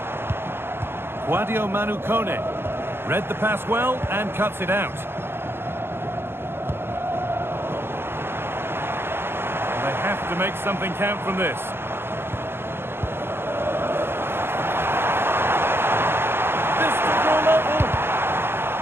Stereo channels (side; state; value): left; late; 0.11 ms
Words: Guadio Manu Kone. Read the pass well and cuts it out. They have to make something count from this. This to draw level.